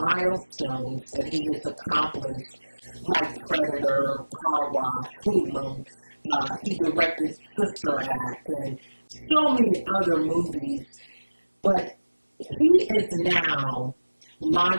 that he has accomplished, like Predator, Car Wash, Hoodlum. He directed Sister Act and so many other movies, but he is now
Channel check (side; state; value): both; inverted; correlation -1.00